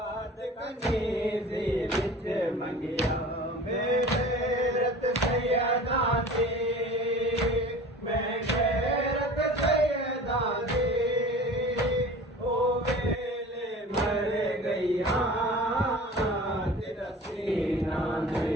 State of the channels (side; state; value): both; normal; correlation 0.40